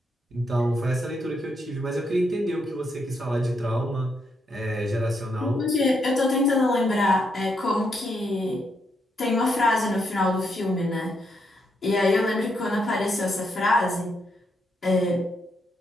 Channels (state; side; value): normal; both; correlation 0.78